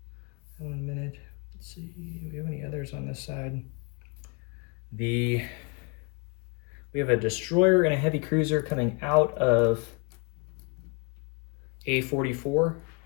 that one in a minute. Let's see, do we have any others on this side? We have a destroyer and a heavy cruiser coming out of A44,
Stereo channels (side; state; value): right; quieter; 32.4 dB